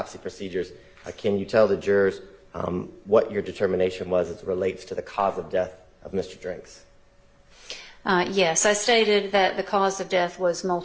procedures, can you tell the jurors what your determination was as it relates to the cause of death of Mr. Drinks? Yes, I stated that the cause of death was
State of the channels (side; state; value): both; identical; correlation 1.00